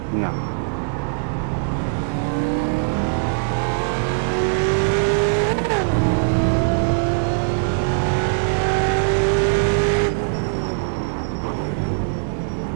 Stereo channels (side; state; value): left; silent; 61 dB below the other